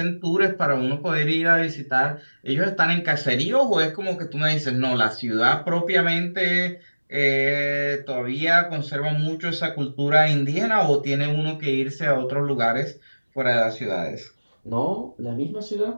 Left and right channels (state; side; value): inverted; both; correlation -1.00